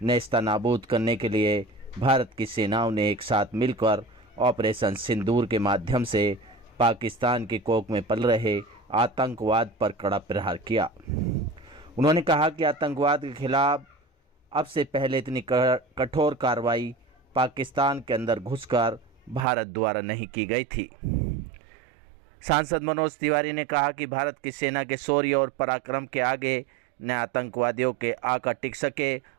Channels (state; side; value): drops out; left; at 19.4 s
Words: करने के लिए भारत की सेनाओं ने एक साथ मिलकर ऑपरेशन सिंदूर के माध्यम से पाकिस्तान की कोख में पल रहे आतंकवाद पर कड़ा प्रहार किया। उन्होंने कहा कि आतंकवाद के खिलाफ अब से पहले इतनी कठोर कार्रवाई पाकिस्तान के अंदर घुसकर भारत द्वारा नहीं की गई थी। सांसद मनोज तिवारी ने कहा कि भारत की सेना के शौर्य और पराक्रम के आगे न आतंकवादियों के आका टिक सके